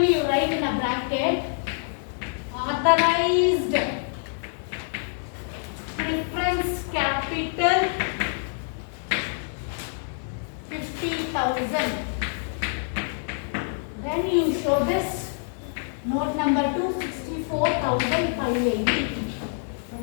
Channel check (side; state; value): right; silent; digital silence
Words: you write in a bracket authorized preference capital 50,000. Then you show this note number 2, 64,580.